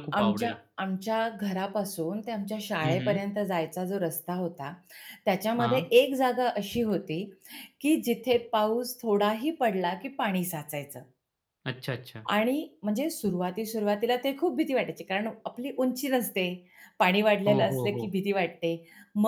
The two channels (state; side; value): identical; both; correlation 1.00